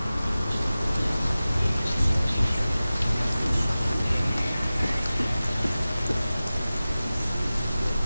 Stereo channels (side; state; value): both; inverted; correlation -0.96